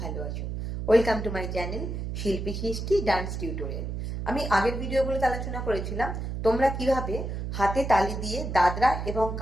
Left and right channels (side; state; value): right; noise; hum, 4 dB below the sound